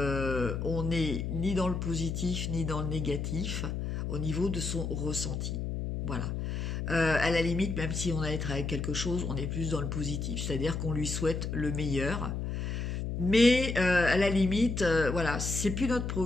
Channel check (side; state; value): left; noise; hum, 3 dB below the sound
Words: n'est ni dans le positif ni dans le négatif au niveau de son ressenti. Voilà. À la limite, même si on a à être avec quelque chose, on est plus dans le positif, c'est-à-dire qu'on lui souhaite le meilleur. Mais à la limite, voilà, c'est plus notre